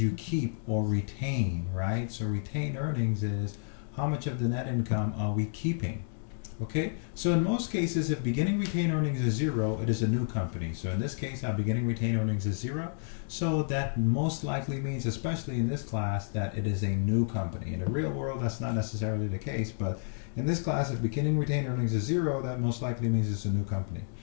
keep or retain, right? So retained earnings is how much of the net income are we keeping? Okay, so in most cases, if beginning retained earnings is zero, it is a new company. So in this case, our beginning retained earnings is zero. So that most likely means, especially in this class, that it is a new company. In the real world, that's not necessarily the case, but in this class, if beginning retained earnings is zero, that most likely means it's a new company.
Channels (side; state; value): right; silent; digital silence